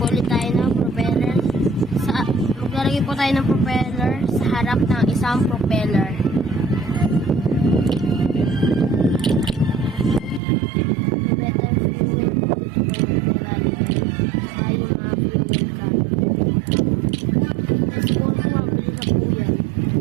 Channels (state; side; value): drops out; left; at 10.4 s